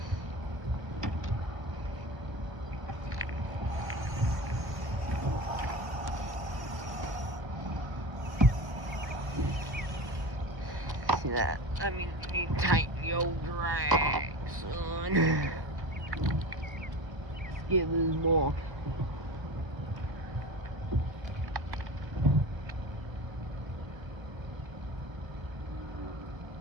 See that? I mean, you need to tighten your drag, son. Let's get this ball.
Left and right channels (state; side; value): late; left; 1.1 ms